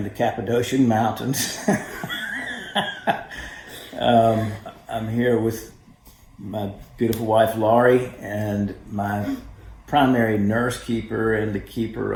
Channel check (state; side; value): identical; both; correlation 1.00